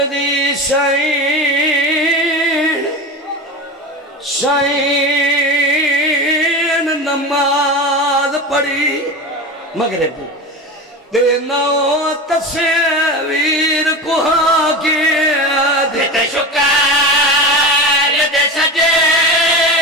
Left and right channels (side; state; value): both; normal; correlation 0.26